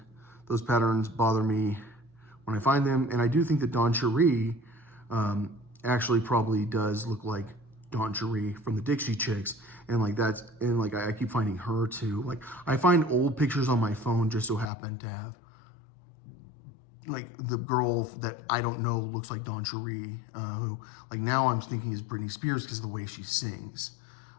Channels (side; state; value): right; drops out; at 14.7 s